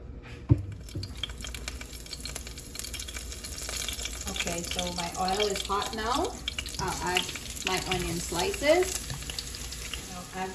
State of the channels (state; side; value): identical; both; correlation 1.00